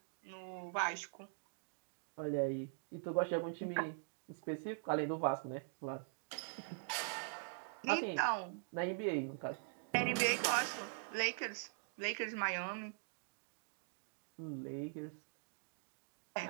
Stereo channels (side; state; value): left; silent; digital silence